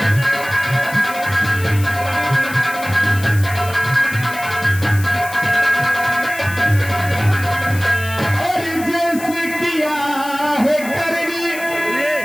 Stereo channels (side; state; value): left; noise; hiss, 14 dB below the sound